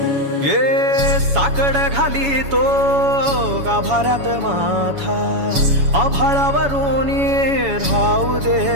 ये साकड घाली तो गाभाऱ्यात माथा, आभाळावरून राहू दे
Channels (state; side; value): late; left; 7.1 ms